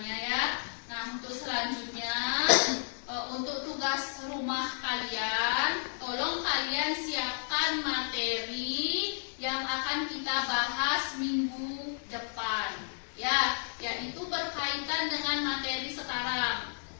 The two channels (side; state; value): right; silent; digital silence